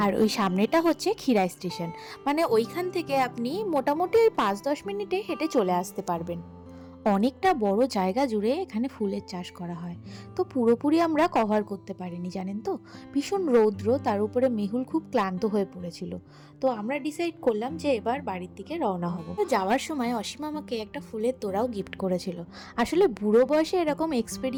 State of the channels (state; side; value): identical; both; correlation 1.00